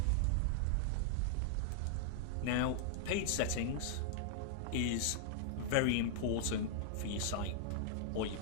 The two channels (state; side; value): different; both; correlation -0.01